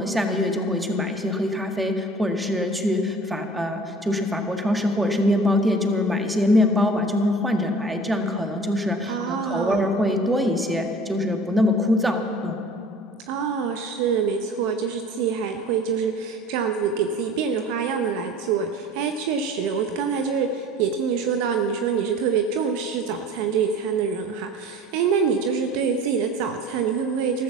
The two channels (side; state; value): both; normal; correlation 0.45